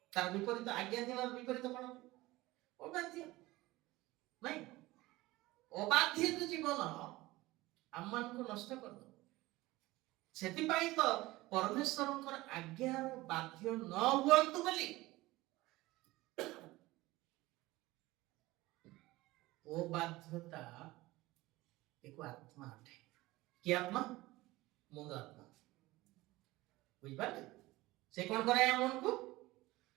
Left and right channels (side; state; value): left; quieter; 19.2 dB